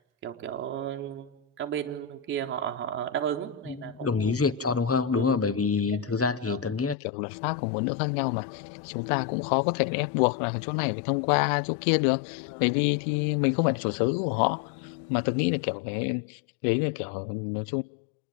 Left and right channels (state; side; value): drops out; right; at 7.0 s